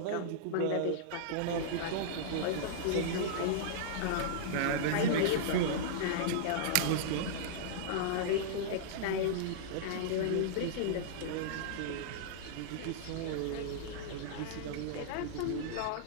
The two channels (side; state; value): both; different; correlation -0.02